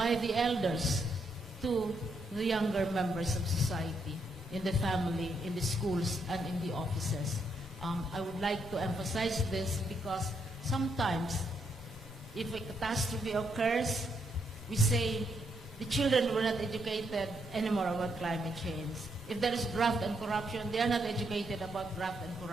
the elders to the younger members of society, in the family, in the schools, and in the offices. I would like to emphasize this because sometimes if a catastrophe occurs, we say the children were not educated anymore about climate change. If there is graft and corruption, they are not educated about graft and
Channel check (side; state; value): both; normal; correlation 0.77